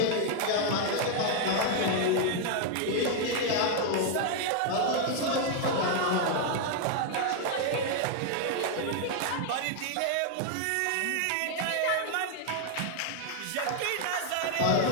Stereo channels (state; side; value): different; both; correlation 0.00